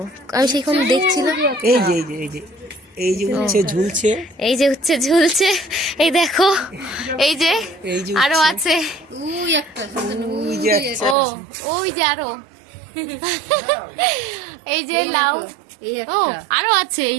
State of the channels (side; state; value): left; drops out; at 11.2 s